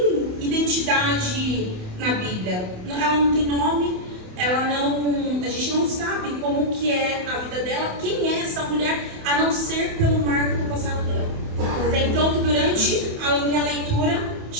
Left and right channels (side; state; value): left; late; 28 ms